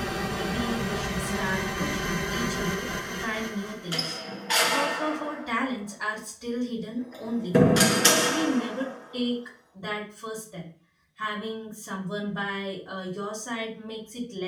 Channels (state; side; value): identical; both; correlation 1.00